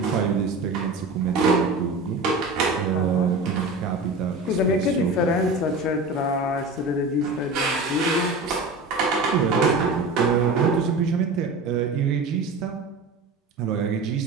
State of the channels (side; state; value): left; quieter; 3.1 dB